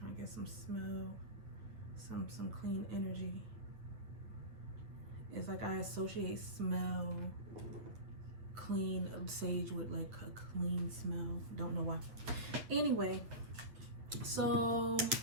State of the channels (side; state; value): left; late; 9.0 ms